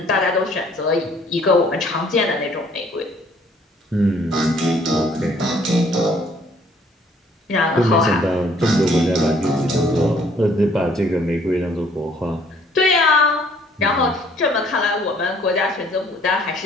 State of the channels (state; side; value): normal; both; correlation 0.60